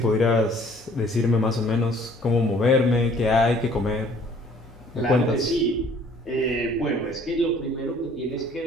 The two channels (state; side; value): normal; both; correlation 0.56